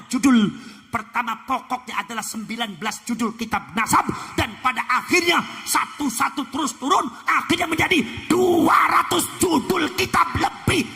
judul. Pertama pokoknya adalah 19 judul kitab nasab, dan pada akhirnya satu-satu terus turun, akhirnya menjadi 200 judul kitab lebih.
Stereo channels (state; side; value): identical; both; correlation 1.00